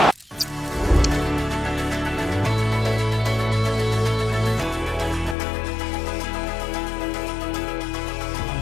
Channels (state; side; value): drops out; right; at 5.4 s